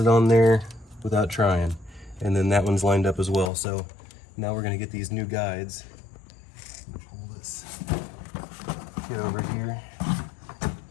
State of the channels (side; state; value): right; drops out; at 3.5 s